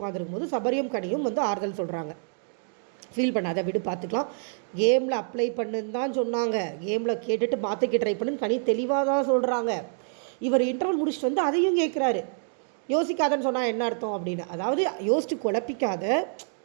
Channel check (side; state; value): left; silent; 58 dB below the other